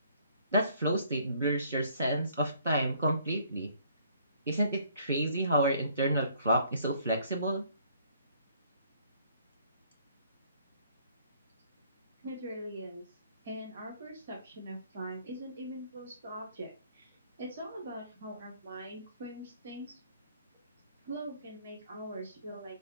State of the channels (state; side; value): inverted; both; correlation -0.62